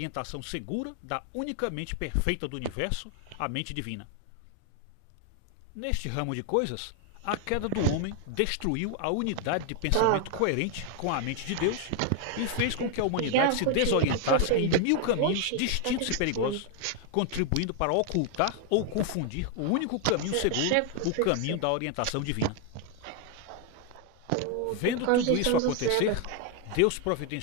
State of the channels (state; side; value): different; both; correlation 0.00